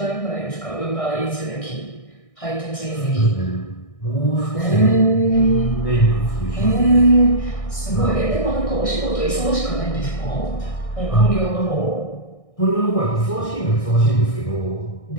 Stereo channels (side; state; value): right; late; 1.6 ms